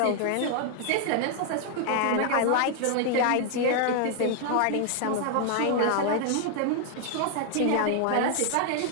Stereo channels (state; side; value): different; both; correlation 0.00